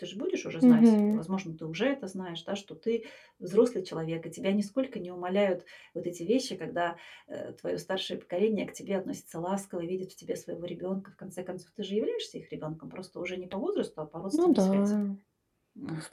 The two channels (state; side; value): identical; both; correlation 1.00